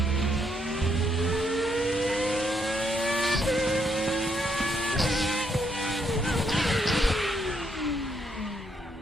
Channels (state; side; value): normal; both; correlation 0.75